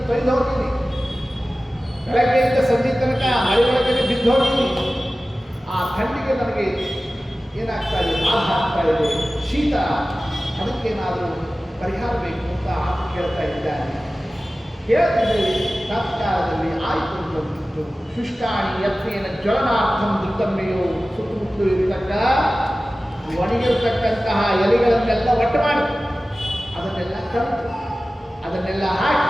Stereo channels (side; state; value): both; normal; correlation 0.96